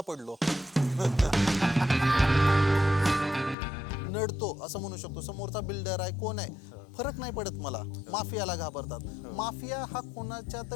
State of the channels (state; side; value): drops out; right; at 3.6 s